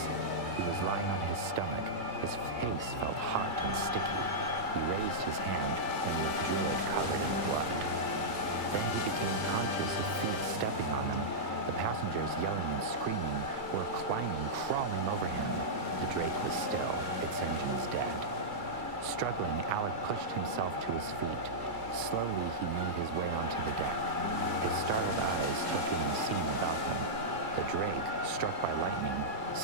He was lying on his stomach. His face felt hot and sticky. He raised his hand and withdrew it covered in blood. Then he became conscious of feet stepping on him. The passengers, yelling and screaming, were climbing, crawling over him. The Drake was still, its engines dead. Struggling, Alec pushed himself to his feet. Slowly he made his way onto the deck. His startled eyes took in the scene about him. The Drake, struck by lightning,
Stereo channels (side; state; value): left; late; 2.3 ms